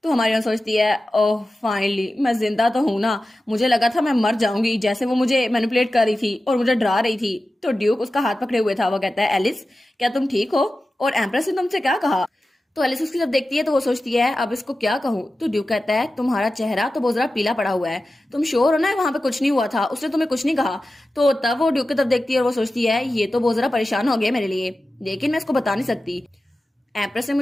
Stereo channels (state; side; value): normal; both; correlation 0.94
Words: तो हमारी हीरोइन सोचती है ओह फाइनली मैं जिंदा तो हूं ना, मुझे लगा था मैं मर जाऊंगी जैसे वो मुझे मैनिपुलेट कर रही थी और मुझे डरा रही थी। तो ड्यूक उसका हाथ पकड़े हुए था। वो कहता है एलिस क्या तुम ठीक हो? और एम्प्रेस ने तुमसे क्या कहा? तो एलिस उसकी जब देखती है तो वो सोचती है अब इसको क्या कहूँ। तो ड्यूक कहता है तुम्हारा चेहरा तो बहुत ज्यादा पीला पड़ा हुआ है, तुम श्योर हो ना वहां पे कुछ नहीं हुआ था, उसने तुम्हें कुछ नहीं कहा? तो तब वो ड्यूक की तरफ देखती है और वो सोचती है ये तो बहुत ज्यादा परेशान हो गया मेरे लिए, लेकिन मैं इसको बता नहीं सकती। एम्प्रेस ने